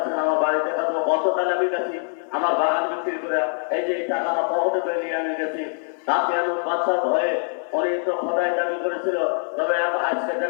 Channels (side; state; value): right; silent; digital silence